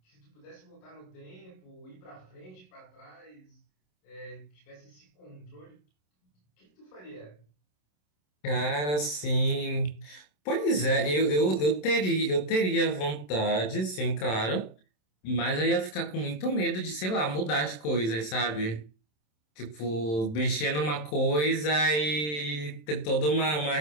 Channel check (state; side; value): late; right; 27 ms